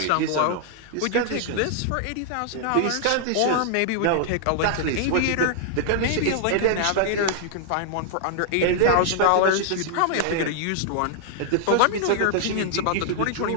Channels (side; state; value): both; different; correlation -0.01